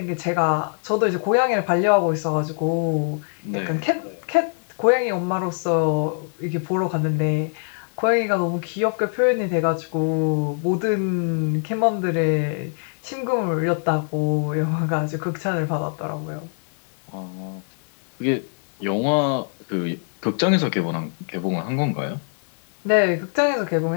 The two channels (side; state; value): right; silent; 57 dB below the other